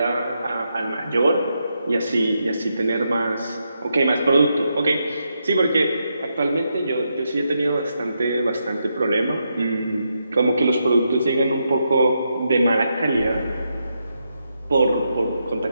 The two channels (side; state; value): both; inverted; correlation -0.83